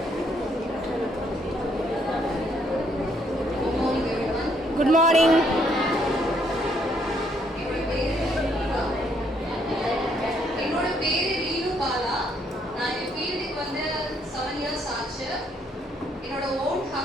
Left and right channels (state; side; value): normal; both; correlation 0.70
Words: Good morning. என்னோட பேரு ரீனு பாலா. நான் இந்த ஃபீல்டுக்கு வந்து 7 இயர்ஸ் ஆச்சு. என்னோட ஓன்